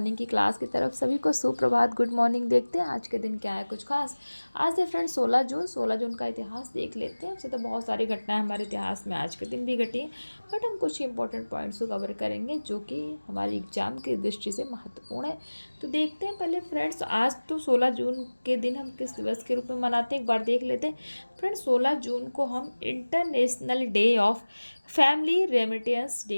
की क्लास की तरफ। सभी को सुप्रभात, गुड मॉर्निंग। देखते हैं आज के दिन क्या है कुछ खास। आज है फ्रेंड 16 जून का इतिहास देख लेते हैं। वैसे तो बहुत सारी घटनाएं हमारे इतिहास में आज के दिन भी घटी हैं, बट हम कुछ इंपॉर्टेंट पॉइंट्स को कवर करेंगे जो कि हमारी एग्जाम की दृष्टि से महत्वपूर्ण है। तो देखते हैं पहले फ्रेंड्स, आज तो 16 जून के दिन हम किस दिवस के रूप में मनाते हैं एक बार देख लेते हैं। फ्रेंड्स, 16 जून को हम international day of family remittance day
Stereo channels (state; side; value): inverted; both; correlation -1.00